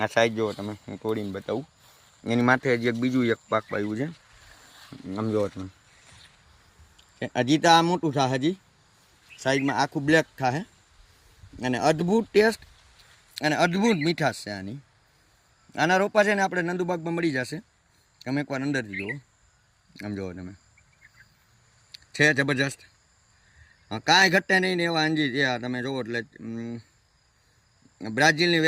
સાઈઝ જુઓ, તમે હું તોડીને બતાવું। એની માથે હજી એક બીજું એક પાક પાયું છે, આમ જુઓ તમે। હજી તો આ મોટું થાય, હજી સાઈડમાં આખું બ્લેક થાય અને અદ્ભુત ટેસ્ટ અને અદ્ભુત મીઠાશ છે આની। આના રોપા છે ને આપણે નંદુબાગમાં મળી જશે। તમે એકવાર અંદરથી જુઓ, આમ જુઓ તમે, છે જબરજસ્ત। કાંઈ ઘટે નહીં ને એવા અંજીર છે। તમે જુઓ એટલે બ્રાઝિલની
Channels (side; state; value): both; identical; correlation 1.00